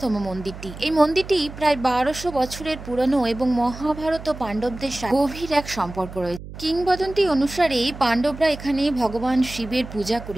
মন্দিরটি। এই মন্দিরটি প্রায় 1200 বছরের পুরনো এবং মহাভারত ও পাণ্ডবদের সাথে গভীর এক সম্পর্ক রয়েছে। কিংবদন্তি অনুসারে পাণ্ডবরা এখানে ভগবান শিবের পূজা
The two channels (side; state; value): right; noise; hum, 13 dB below the sound